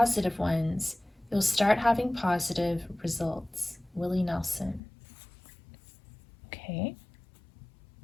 ones, you'll start having positive results." Willie Nelson. Okay.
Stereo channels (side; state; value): right; drops out; at 4.8 s